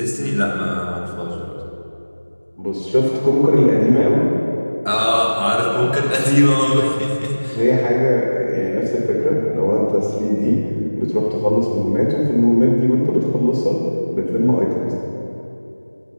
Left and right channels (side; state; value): both; inverted; correlation -1.00